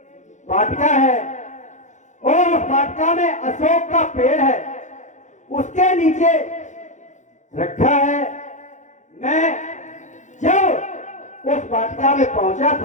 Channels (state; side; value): late; right; 0.35 ms